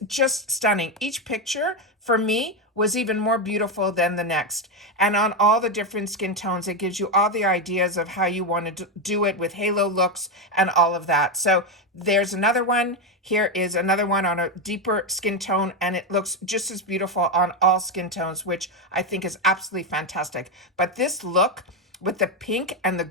just stunning. Each picture for me was even more beautiful than the next. And on all the different skin tones, it gives you all the ideas of how you want to do it with halo looks and all of that. So there's another one. Here is another one on a deeper skin tone, and it looks just as beautiful on all skin tones, which I think is absolutely fantastic. But this look with the pink and the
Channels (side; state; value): both; normal; correlation 0.09